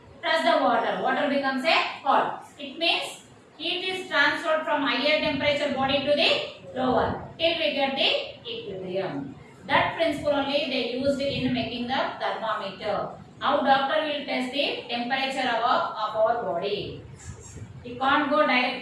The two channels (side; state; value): both; identical; correlation 1.00